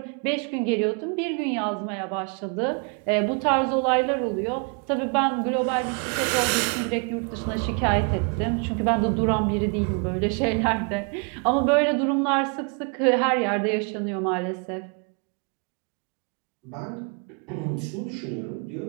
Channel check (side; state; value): left; quieter; 37.1 dB